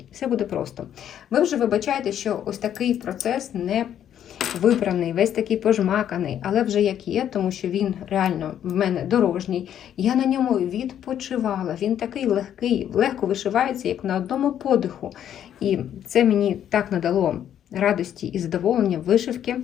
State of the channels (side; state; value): right; quieter; 10.1 dB